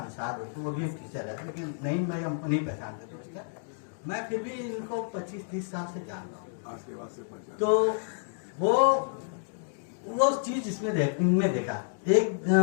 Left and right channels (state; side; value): silent; right; digital silence